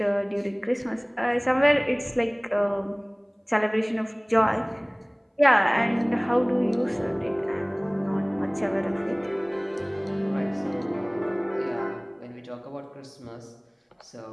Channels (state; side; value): identical; both; correlation 1.00